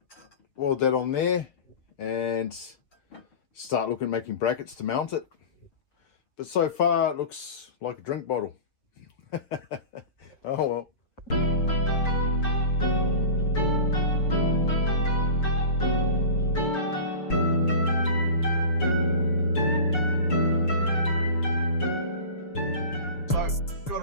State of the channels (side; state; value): right; late; 6.8 ms